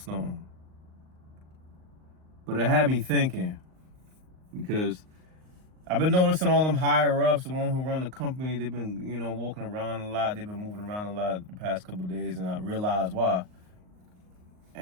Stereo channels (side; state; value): left; late; 38 ms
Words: But it had me thinking, because I've been noticing all them higher ups, the one who run the company, they've been, walking around a lot. They've been moving around a lot the past couple of days, and I realized why.